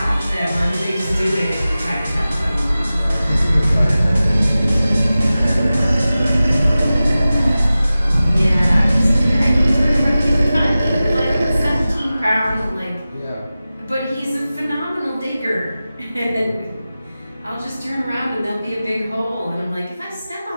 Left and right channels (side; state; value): both; inverted; correlation -0.95